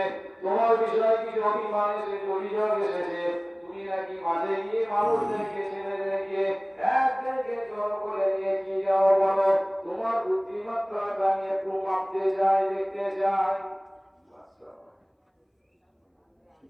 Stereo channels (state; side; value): identical; both; correlation 1.00